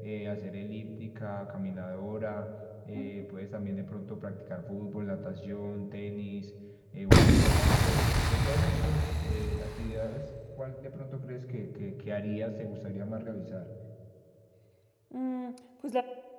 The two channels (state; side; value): identical; both; correlation 1.00